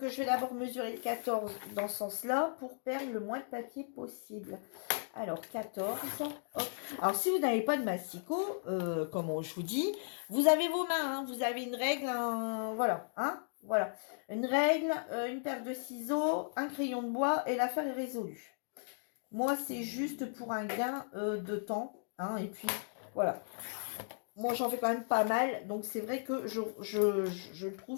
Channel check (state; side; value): silent; right; digital silence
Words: je vais d'abord mesurer le 14 dans ce sens-là pour perdre le moins de papier possible. Alors, 14. Hop. Alors, si vous n'avez pas de massicot, comme je vous dis, vous avez vos mains. Hein, vous avez une règle, voilà. Hein, voilà. Une règle, une paire de ciseaux, un crayon de bois et l'affaire est résolue. Moi, c'est juste pour un gain de temps. Hein, et puis, voilà. Moi, j'en fais quand même pas mal. Donc, c'est vrai que je